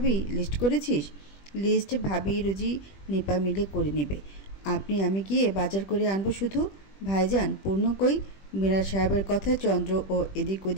লিস্ট করেছিস? লিস্ট ভাবি রুজি নিপা মিলে করে নেবে। আমি গিয়ে বাজার করে আনবো শুধু। ভাইজান পূর্ণ কই? মিরাজ সাহেবের কথায় চন্দ্র ও এদিক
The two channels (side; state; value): right; late; 20 ms